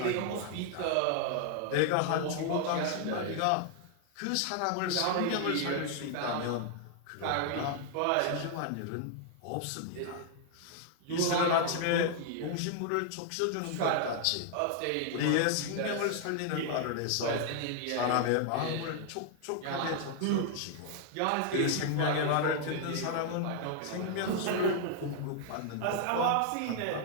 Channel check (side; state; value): both; different; correlation 0.00